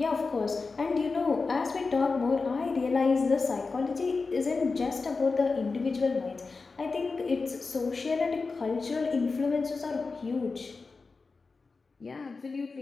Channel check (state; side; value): quieter; right; 4.2 dB